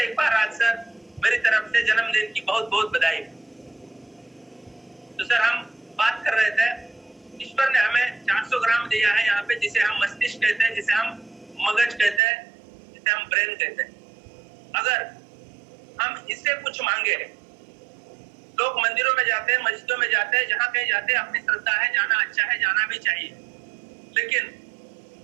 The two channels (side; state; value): left; drops out; at 12.2 s